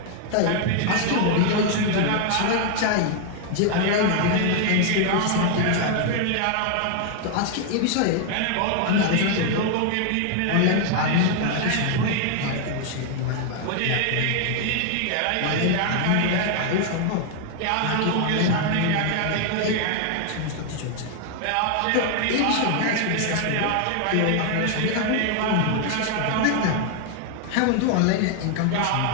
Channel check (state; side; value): different; both; correlation 0.00